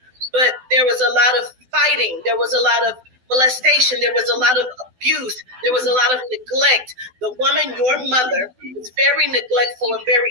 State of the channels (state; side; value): late; left; 12 ms